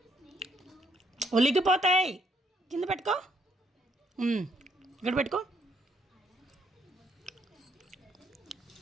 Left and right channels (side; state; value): both; normal; correlation 0.70